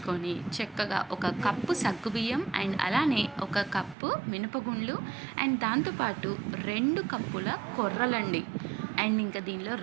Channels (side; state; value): left; drops out; at 4.0 s